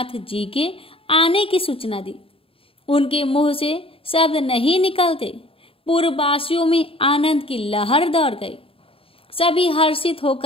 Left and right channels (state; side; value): late; right; 0.27 ms